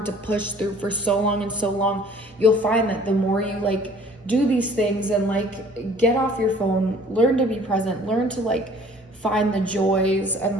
to push through for so long and so long. You'll find that the more you like do these things and like get off your phone, learn to be present, learn to like find the joys and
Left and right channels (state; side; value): normal; both; correlation 0.53